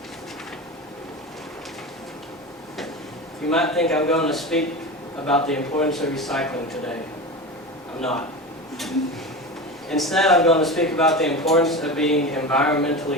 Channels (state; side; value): normal; both; correlation 0.26